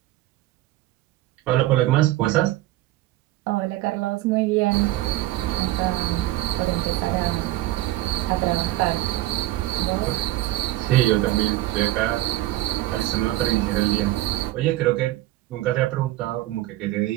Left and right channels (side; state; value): left; quieter; 16.4 dB